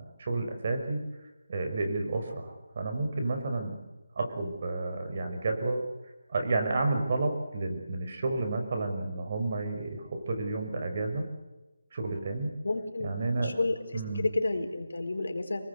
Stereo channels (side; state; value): both; inverted; correlation -0.86